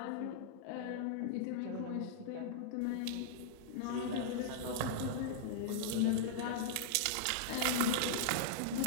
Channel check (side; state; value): both; different; correlation -0.02